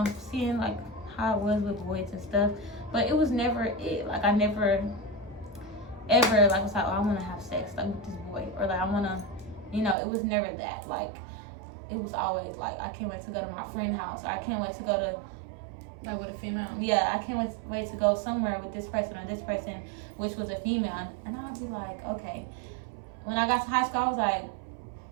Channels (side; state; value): left; drops out; at 10.0 s